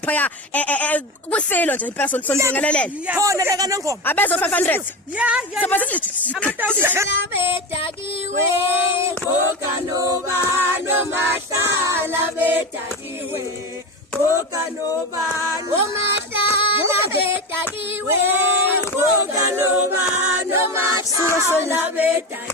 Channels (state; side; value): normal; both; correlation 0.22